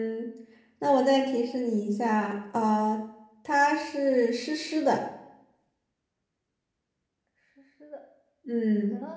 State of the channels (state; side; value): identical; both; correlation 1.00